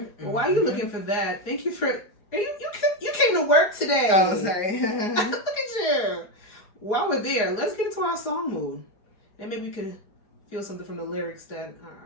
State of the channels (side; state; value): right; late; 4.9 ms